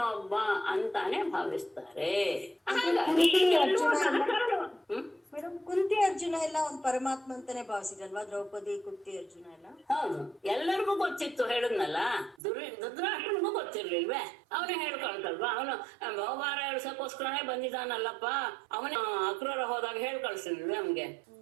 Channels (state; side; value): drops out; left; at 12.4 s